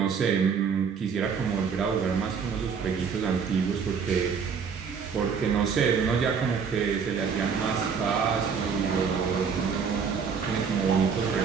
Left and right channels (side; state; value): left; quieter; 6.2 dB